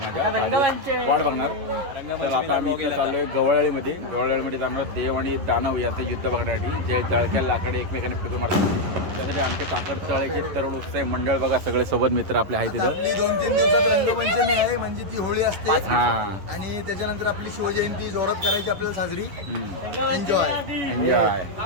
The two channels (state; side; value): late; left; 11 ms